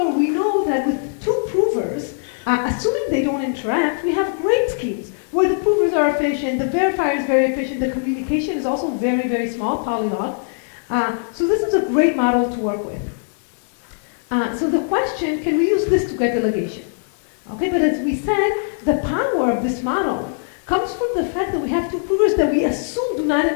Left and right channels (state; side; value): silent; right; 57 dB below the other